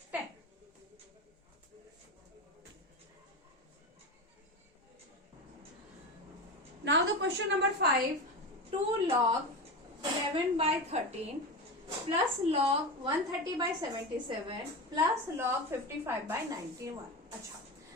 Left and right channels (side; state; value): both; normal; correlation 0.22